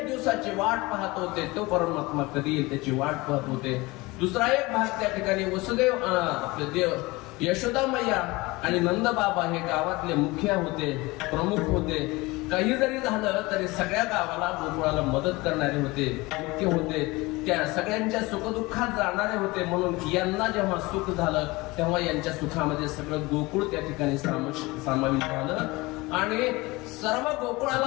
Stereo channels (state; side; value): quieter; right; 22.4 dB